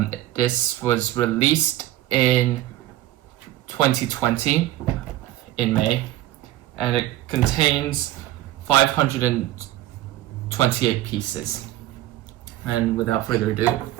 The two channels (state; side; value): quieter; left; 14.9 dB